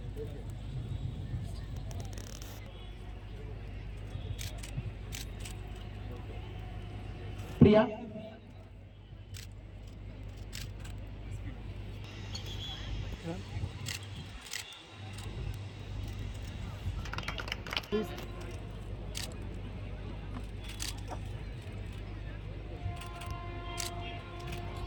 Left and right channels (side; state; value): both; identical; correlation 1.00